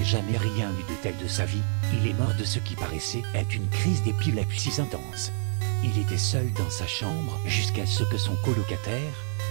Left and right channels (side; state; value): left; silent; 60 dB below the other